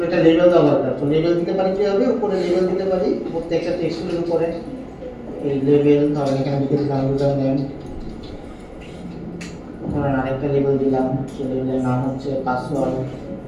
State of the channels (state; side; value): identical; both; correlation 1.00